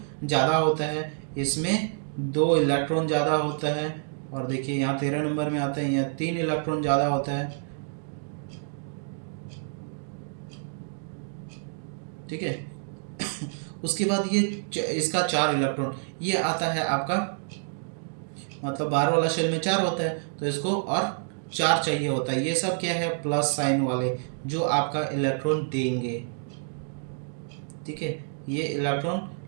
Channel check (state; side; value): silent; left; digital silence